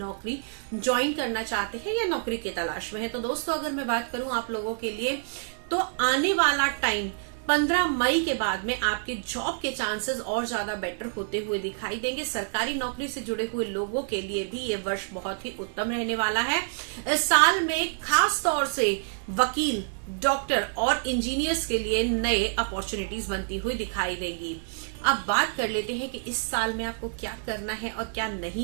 ज्वाइन करना चाहते हैं या नौकरी के तलाश में है। तो दोस्तों अगर मैं बात करूं आप लोगों के लिए, तो आने वाला टाइम 15 मई के बाद में आपके जॉब के चांसेस और ज्यादा बेटर होते हुए दिखाई देंगे। सरकारी नौकरी से जुड़े हुए लोगों के लिए भी ये वर्ष बहुत ही उत्तम रहने वाला है। इस साल में खास तौर से वकील, डॉक्टर और इंजीनियर्स के लिए नए अपॉर्चुनिटीज बनती हुई दिखाई देगी। अब बात कर लेते हैं कि इस साल में आपको क्या करना है और क्या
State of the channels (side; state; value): left; silent; digital silence